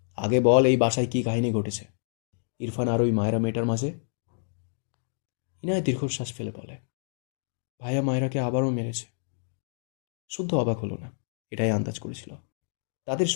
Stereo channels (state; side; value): silent; right; digital silence